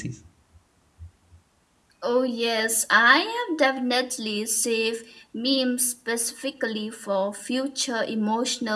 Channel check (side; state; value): both; identical; correlation 1.00